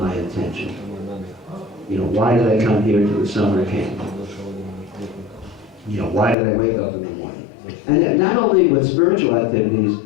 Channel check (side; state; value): right; drops out; at 6.4 s